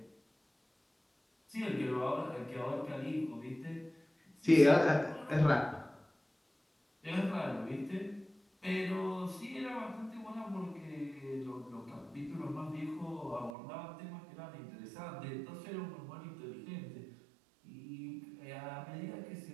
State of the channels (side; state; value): left; drops out; at 13.5 s